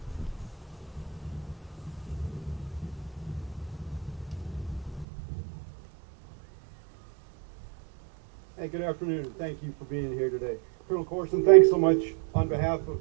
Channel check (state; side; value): drops out; left; at 5.1 s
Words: Hey, good afternoon. Thank you for being here today. Colonel Corson, thanks so much on behalf